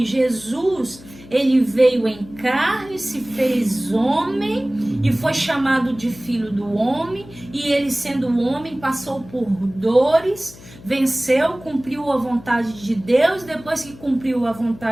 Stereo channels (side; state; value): left; noise; hum, 20 dB below the sound